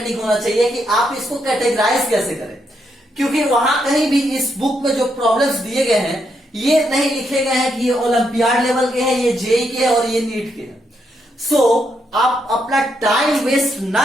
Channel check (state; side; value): normal; both; correlation 0.79